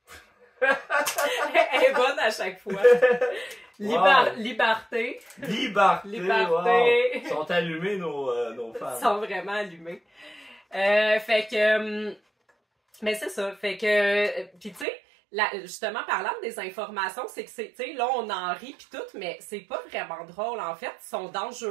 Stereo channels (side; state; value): left; drops out; at 14.9 s